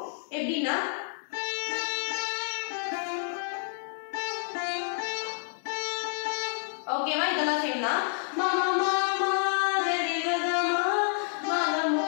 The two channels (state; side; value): silent; right; 59 dB below the other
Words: எப்படின்னா ஓகேவா? இதெல்லாம் சேம் தான். மாமா மாமா கரிகமா மகமா.